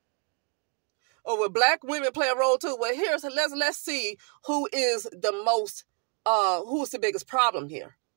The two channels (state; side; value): quieter; left; 35.2 dB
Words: Or will Black women play a role too? Well, let's see who is who's the biggest problem here.